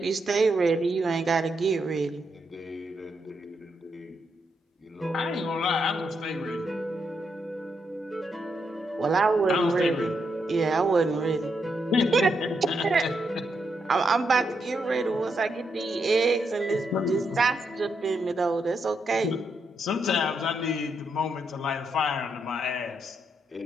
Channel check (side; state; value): both; normal; correlation 0.80